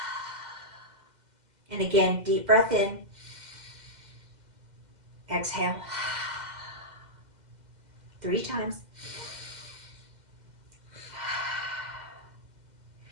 And again, deep breath in, exhale. 3 times.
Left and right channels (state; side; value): late; left; 2.0 ms